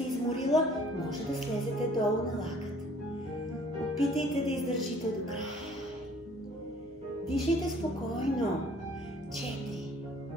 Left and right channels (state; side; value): normal; both; correlation 0.56